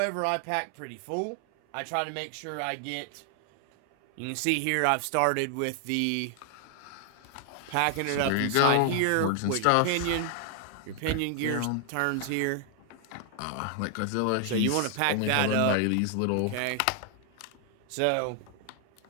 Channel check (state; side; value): different; both; correlation 0.00